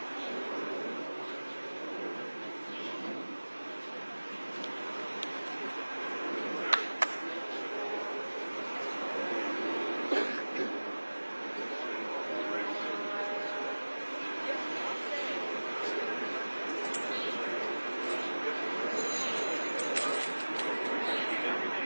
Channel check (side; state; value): both; inverted; correlation -1.00